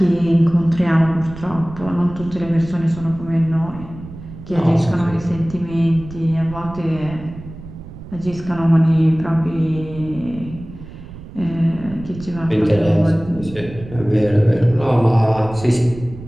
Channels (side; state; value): right; noise; rumble, 15 dB below the sound